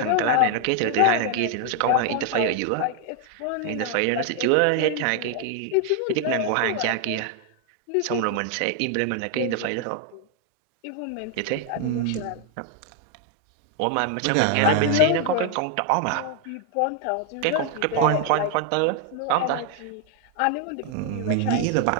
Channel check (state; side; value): different; both; correlation 0.00